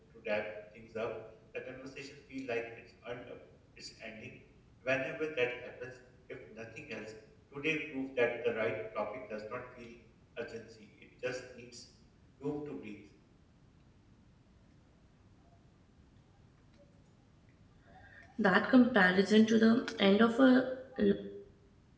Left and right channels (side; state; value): both; identical; correlation 1.00